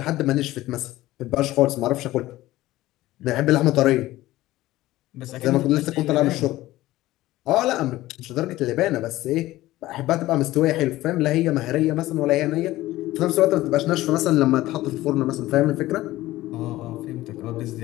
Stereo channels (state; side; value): quieter; right; 16.7 dB